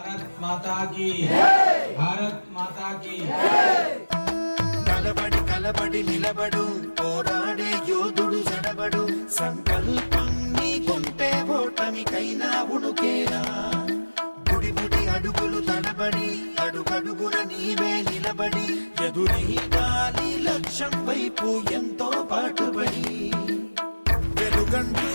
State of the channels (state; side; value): inverted; both; correlation -1.00